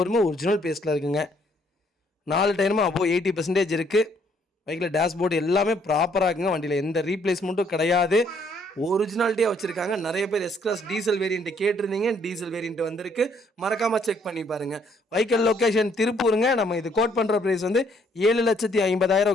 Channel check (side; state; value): both; normal; correlation 0.66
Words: ஒரிஜினல் பேஸ்ட்டில் இருக்குங்க. 4 டயருமே அப்போது 80% இருக்குது. பைக்கில் டேஷ்போர்டு எல்லாமே ப்ராப்பராக இருக்குங்க. வண்டியில் எந்த ரீப்ளேஸ்மெண்ட்டும் கிடையாது. ஒரிஜினாலிட்டியாக வச்சுருக்காங்க. நிறைய பேர் எஸ்-கிளாஸ் டீசல் வேரியண்ட்டு கேட்டிருந்தீங்க. டீசல் வேரியண்ட் வந்திருக்கு. மறக்காமல் செக் பண்ணி பாருங்கள். வெஹிக்கிள் லொக்கேஷன் திருப்பூருங்க. நம்ம இது கோட் பண்ணுற ப்ரைஸ் வந்து